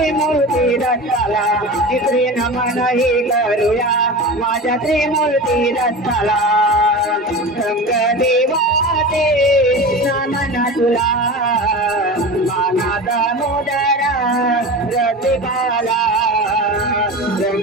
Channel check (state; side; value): normal; both; correlation 0.30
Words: दत्ताला। तिसरे नमन ही करूया माझ्या त्रिमूर्ती दत्ताला। रंग देवाचे नमन तुला मानाचा मुदरा रसिकाला।